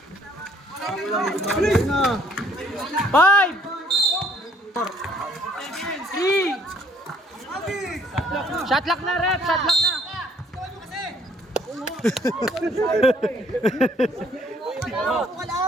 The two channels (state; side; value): normal; both; correlation 0.62